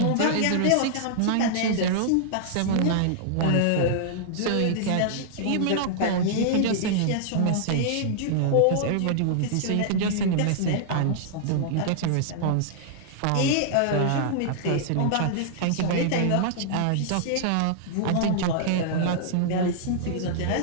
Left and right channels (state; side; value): different; both; correlation -0.01